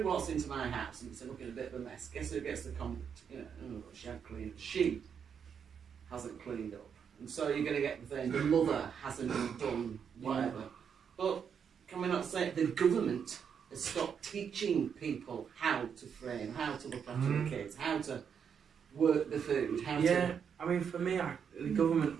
walks into my house and it's looking a bit of a mess, guess who gets the comment? She had cleaned. She hasn't cleaned up. And so you're going to get the thing, the mother hasn't done whatever. But can we not say the government has stopped teaching people how to frame, how to look after the kids, how to work the food, how to... I mean, for me, the government,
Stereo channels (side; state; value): left; quieter; 7.3 dB